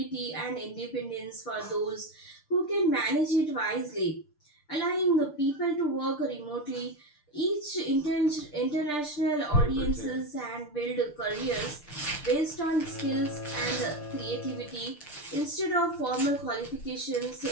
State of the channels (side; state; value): right; late; 6.7 ms